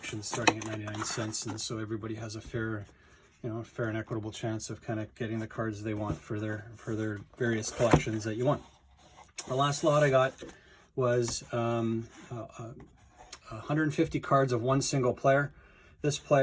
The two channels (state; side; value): identical; both; correlation 1.00